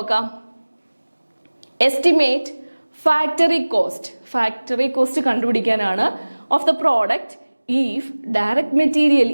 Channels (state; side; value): inverted; both; correlation -1.00